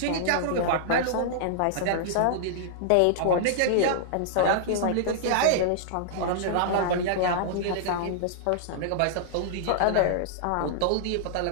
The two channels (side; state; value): both; different; correlation -0.02